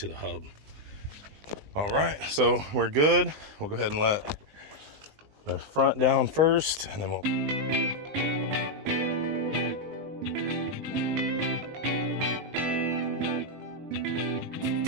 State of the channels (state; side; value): late; left; 19 ms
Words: the hub. All right, so we're good. We'll go ahead and let the front down first, and then we'll...